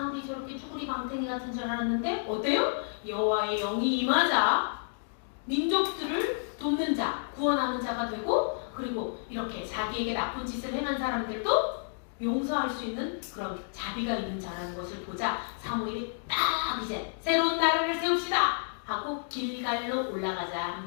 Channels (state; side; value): silent; right; digital silence